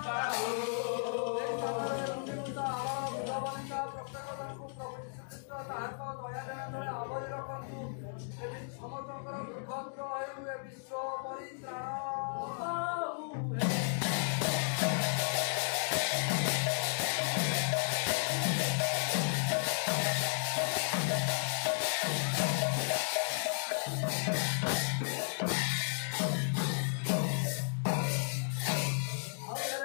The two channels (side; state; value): right; silent; digital silence